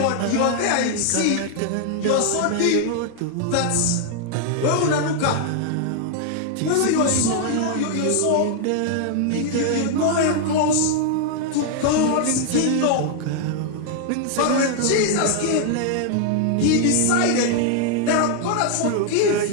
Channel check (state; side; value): different; both; correlation 0.00